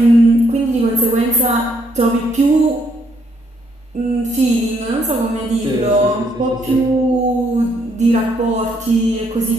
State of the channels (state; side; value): normal; both; correlation 0.72